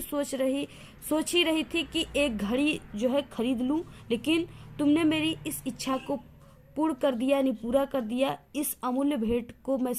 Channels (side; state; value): both; identical; correlation 1.00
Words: ही रही थी कि एक घड़ी जो है खरीद लूं, लेकिन तुमने मेरी इस इच्छा को पूर्ण कर दिया, यानी पूरा कर दिया। इस अमूल्य भेंट को मैं